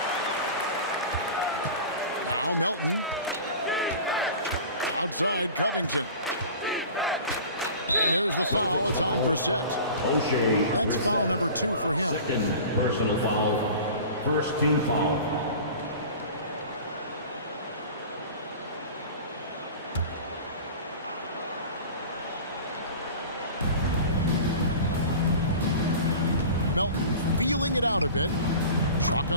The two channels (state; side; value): inverted; both; correlation -0.38